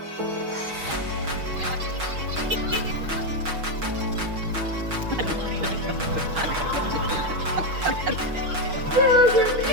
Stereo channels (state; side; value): late; left; 6.3 ms